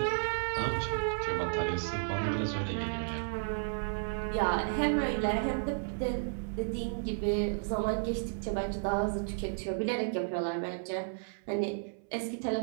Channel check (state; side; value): silent; left; 56 dB below the other